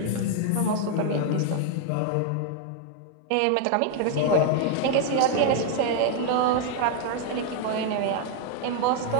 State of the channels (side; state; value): both; different; correlation 0.00